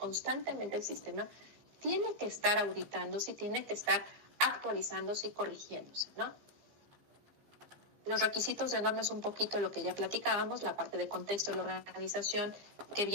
el sistema tiene que estar auditándose y tiene que estar actualizándose y corrigiéndose, ¿no? Los requisitos de norma es un poquito lo que ya platicábamos, la parte de contexto de la organización que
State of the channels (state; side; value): late; left; 15 ms